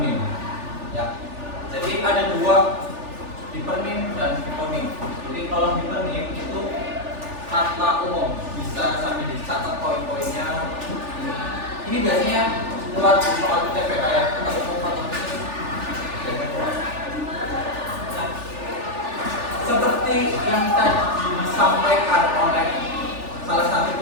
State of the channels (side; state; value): left; late; 3.4 ms